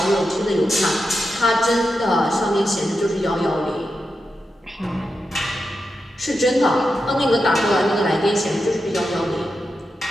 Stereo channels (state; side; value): normal; both; correlation 0.88